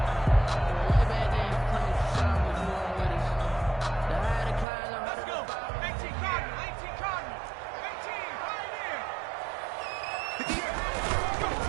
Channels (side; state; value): left; drops out; at 4.7 s